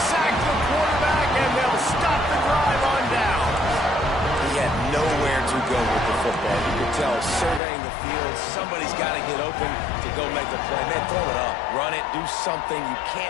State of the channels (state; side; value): drops out; right; at 7.6 s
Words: sack the quarterback, and they'll stop the drive on down. He had nowhere to go with the football. You could tell, surveying the field, somebody's got to get open to go make the play. Man, throw it up. Run it. Do something. You